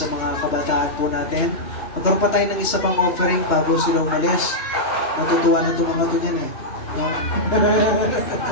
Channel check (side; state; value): right; late; 2.9 ms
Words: mga kabataan po natin. Magkaroon pa tayo ng isa pang offering bago sila umalis. Natutuwa na itong mga to niyan eh. No?